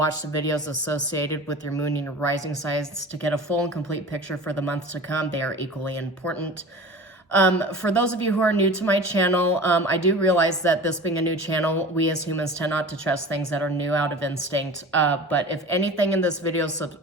the videos associated with your moon and your rising signs to get a full and complete picture for the months to come. They are equally important. For those of you who are new to my channel, I do realize that this being a new channel, we as humans tend not to trust things that are new out of instinct. But if anything in this video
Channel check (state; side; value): normal; both; correlation 0.37